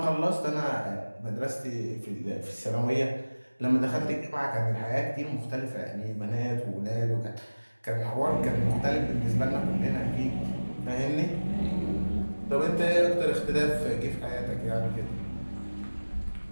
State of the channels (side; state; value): both; inverted; correlation -1.00